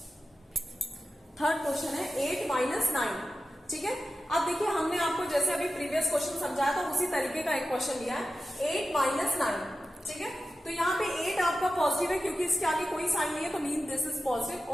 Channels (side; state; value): both; normal; correlation 0.93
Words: थर्ड क्वेश्चन है 8 माइनस 9, ठीक है। अब देखिए हमने आपको जैसे अभी प्रीवियस क्वेश्चन समझाया था उसी तरीके का एक क्वेश्चन लिया है 8 माइनस 9, ठीक है। तो यहाँ पे 8 आपका पॉजिटिव है क्योंकि इसके आगे कोई साइन नहीं है, तो मीन दिस इज पॉजिटिव,